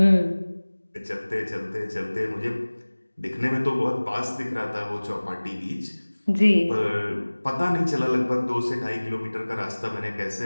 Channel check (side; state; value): both; inverted; correlation -1.00